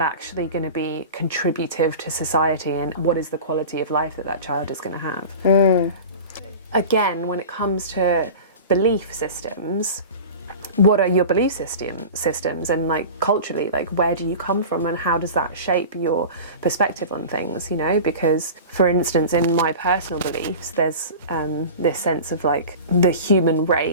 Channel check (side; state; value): both; inverted; correlation -0.34